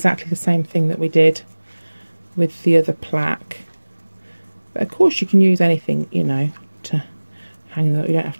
the same thing that we did with the other plaque. But of course you can use anything, you know, to hang that. You don't have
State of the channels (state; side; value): inverted; both; correlation -1.00